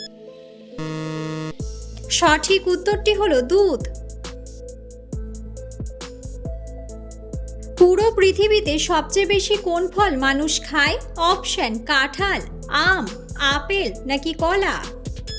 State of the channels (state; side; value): identical; both; correlation 1.00